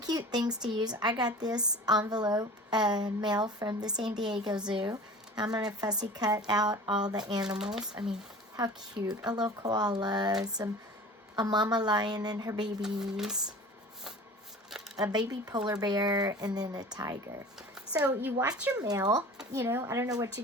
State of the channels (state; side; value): normal; both; correlation 0.40